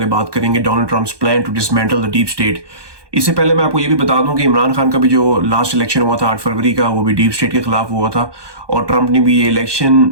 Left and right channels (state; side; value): late; left; 1.2 ms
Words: बात करेंगे Donald Trump's plan to dismantle the deep state. इससे पहले मैं आपको ये भी बता दूं कि इमरान खान का भी जो लास्ट इलेक्शन हुआ था 8 फरवरी का, वो भी डीप स्टेट के खिलाफ हुआ था। और ट्रंप ने भी ये इलेक्शन